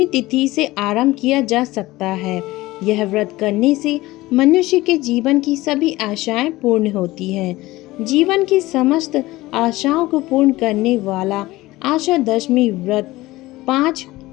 तिथि से आरंभ किया जा सकता है। यह व्रत करने से मनुष्य के जीवन की सभी आशाएं पूर्ण होती हैं। जीवन की समस्त आशाओं को पूर्ण करने वाला आशा दशमी व्रत 5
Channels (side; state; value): right; quieter; 18.7 dB